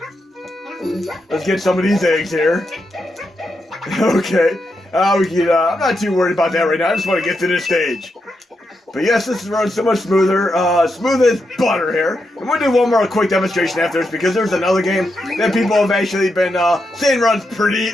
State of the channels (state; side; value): normal; both; correlation 0.84